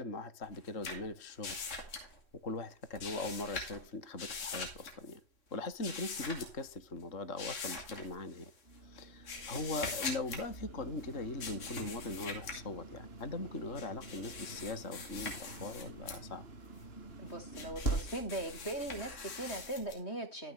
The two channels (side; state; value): right; late; 3.1 ms